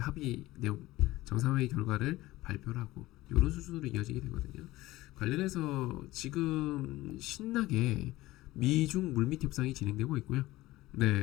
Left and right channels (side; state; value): right; quieter; 18.0 dB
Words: 내용, 정상회의 결과를 발표를 하고, 이런 수준으로 이어지게 되거든요. 관련해서 지금 신나게 미중 물밑 협상이 진행되고 있고요.